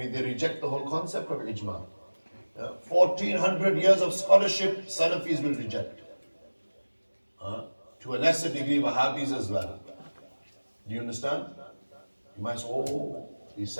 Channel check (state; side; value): inverted; both; correlation -1.00